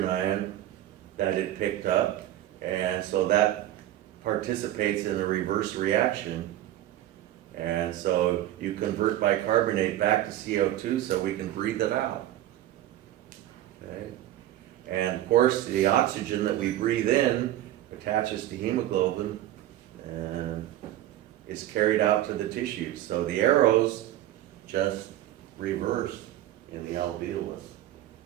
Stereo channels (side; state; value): left; quieter; 13.5 dB